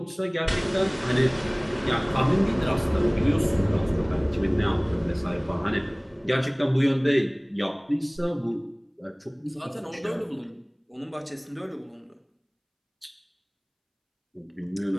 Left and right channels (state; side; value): identical; both; correlation 1.00